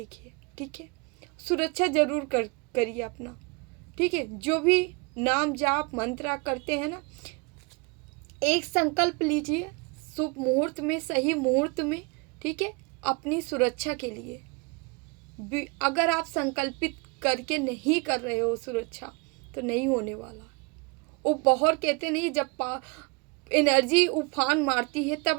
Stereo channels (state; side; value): quieter; left; 29.7 dB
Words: ठीक है, सुरक्षा जरूर करिए अपना। ठीक है, जो भी नाम जाप मंत्र करते हैं ना, एक संकल्प लीजिए शुभ मुहूर्त में, सही मुहूर्त में। ठीक है, अपनी सुरक्षा के लिए। अगर आप संकल्पित करके नहीं कर रहे हो सुरक्षा, तो नहीं होने वाला। वो बहुत कहते नहीं, जब एनर्जी उफान मारती है